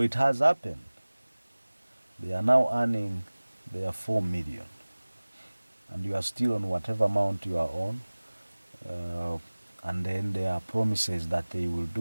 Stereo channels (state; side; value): inverted; both; correlation -1.00